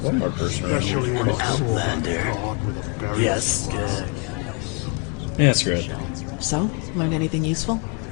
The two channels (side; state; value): right; quieter; 34.9 dB